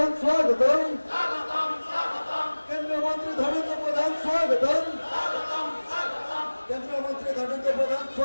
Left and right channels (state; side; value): inverted; both; correlation -1.00